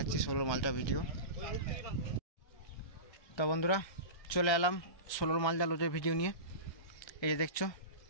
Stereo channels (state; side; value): late; right; 1.3 ms